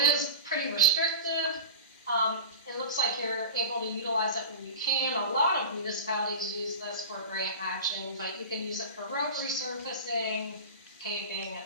is pretty restrictive. It looks like you're able to utilize it when you can. A lot of municipalities use this for grant matching, but you can use it for road resurfacing, paving,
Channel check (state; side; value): inverted; both; correlation -0.30